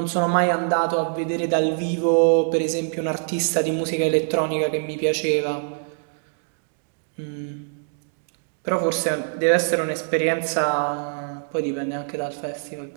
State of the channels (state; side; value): silent; left; digital silence